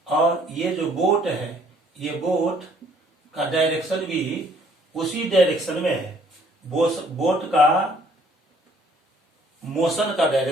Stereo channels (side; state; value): both; normal; correlation 0.61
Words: और ये जो बोट है, ये बोट का डायरेक्शन भी उसी डायरेक्शन में है। बोट का मोशन का